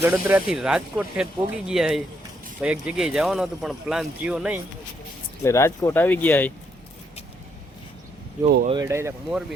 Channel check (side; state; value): both; normal; correlation 0.74